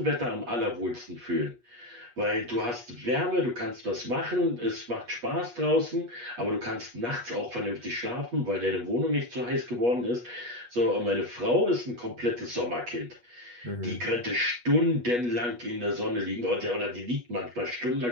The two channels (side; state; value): left; late; 8.3 ms